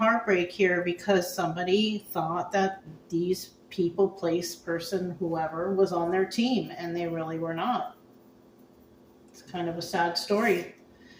here because somebody thought that these people, place, person, whoever was on their team, and they really were not. It's kind of a sad story.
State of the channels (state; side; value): identical; both; correlation 1.00